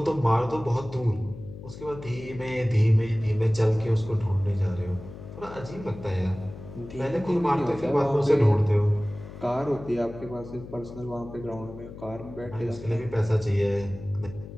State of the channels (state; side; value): noise; left; hum, 14 dB below the sound